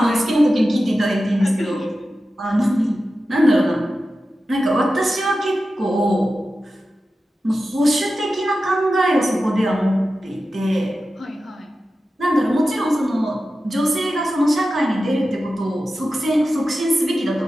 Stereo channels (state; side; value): normal; both; correlation 0.93